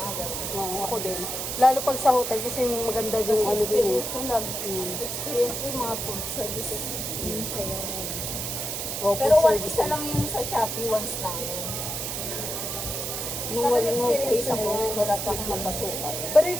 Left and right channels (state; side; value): noise; right; hiss, 3 dB below the sound